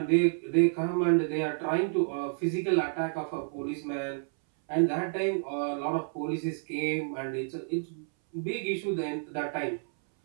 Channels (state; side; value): silent; left; 58 dB below the other